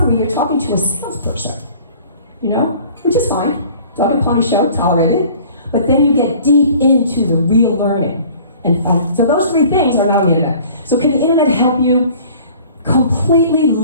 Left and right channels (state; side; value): inverted; both; correlation -0.49